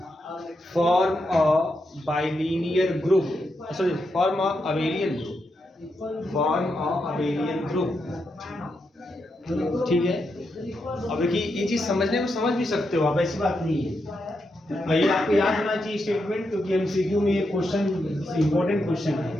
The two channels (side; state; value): both; normal; correlation 0.84